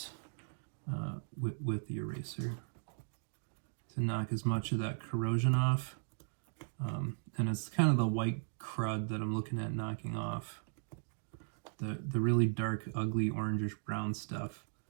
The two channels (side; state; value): left; silent; digital silence